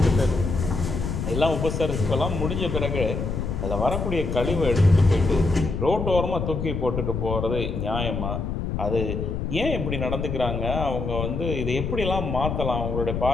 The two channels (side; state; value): left; noise; rumble, 3 dB below the sound